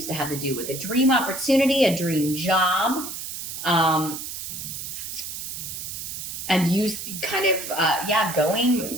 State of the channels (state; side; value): noise; right; hiss, 7 dB below the sound